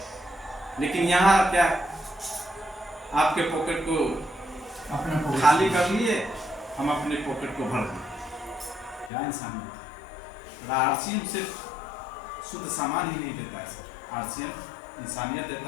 लेकिन यहाँ क्या, आपके पॉकेट को अपना खाली कर लिए, हम अपने पॉकेट को भर दिए। क्या इंसानियत। आरसीएम सिर्फ शुद्ध सामान ही नहीं देता है सर, आरसीएम इंसानियत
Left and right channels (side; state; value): right; drops out; at 9.1 s